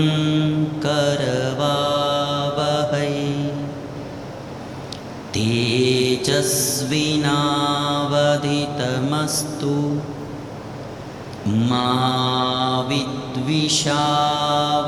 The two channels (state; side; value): identical; both; correlation 1.00